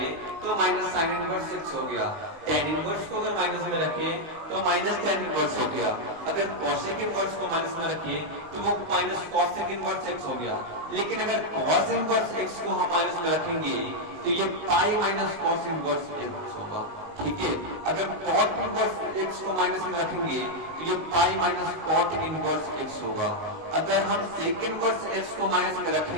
तो माइनस साइन इनवर्स एक्स हो गया। टेन इनवर्स को अगर माइनस में रखे तो माइनस टेन इनवर्स हो गया। अगर कॉसेक इनवर्स को माइनस में रखे तो वो माइनस कॉसेक इनवर्स एक्स हो गया। लेकिन अगर कॉस इनवर्स एक्स को हम माइनस में रखेंगे तो ये pi minus cos inverse x होगा, ठीक है। अगर कॉट इनवर्स एक्स को माइनस में रखेंगे तो ये pi minus cot inverse x होगा। अगर हम सेक इनवर्स एक्स को माइनस में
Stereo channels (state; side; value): late; left; 19 ms